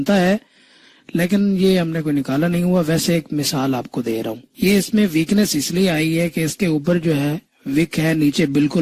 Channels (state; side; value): identical; both; correlation 1.00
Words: है, लेकिन ये हमने कोई निकाला नहीं हुआ। वैसे एक मिसाल आपको दे रहा हूँ। ये इसमें वीकनेस इसलिए आई है कि इसके ऊपर जो है विक है, नीचे